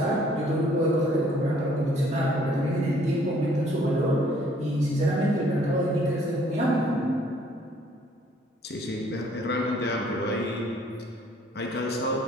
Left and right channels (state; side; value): normal; both; correlation 0.61